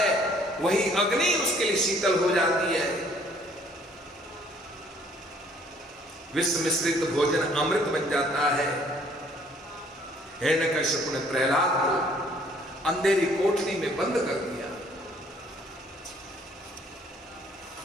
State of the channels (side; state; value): both; normal; correlation 0.60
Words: वही अग्नि उसके लिए शीतल हो जाती है। विष मिश्रित भोजन अमृत बन जाता है। हिरण्यकश्यप ने प्रहलाद को अंधेरी कोठरी में बंद कर दिया।